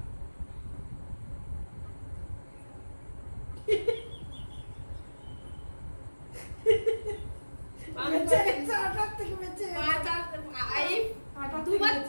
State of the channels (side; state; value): both; inverted; correlation -1.00